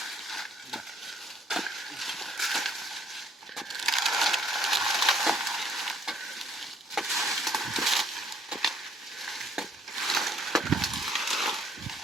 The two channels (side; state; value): both; normal; correlation 0.62